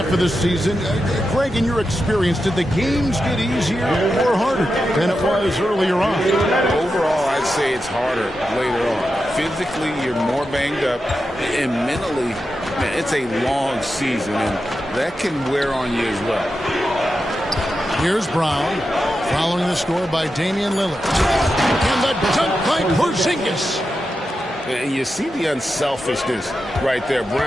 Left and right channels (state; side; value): normal; both; correlation 0.89